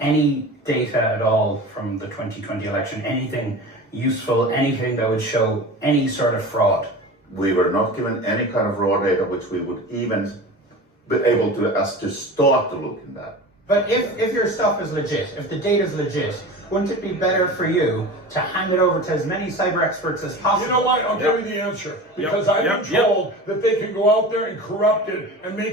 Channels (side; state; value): both; normal; correlation 0.33